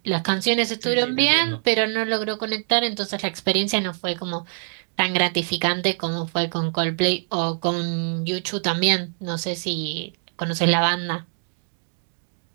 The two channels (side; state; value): left; silent; digital silence